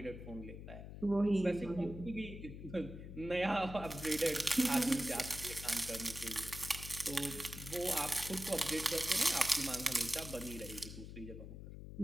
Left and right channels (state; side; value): noise; left; hum, 11 dB below the sound